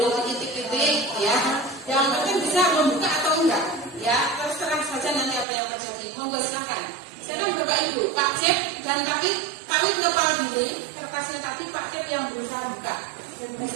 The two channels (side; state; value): left; drops out; at 5.5 s